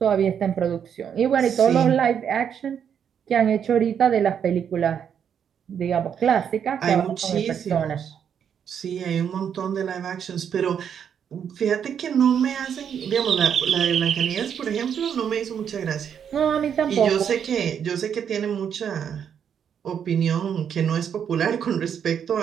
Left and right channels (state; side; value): quieter; left; 8.1 dB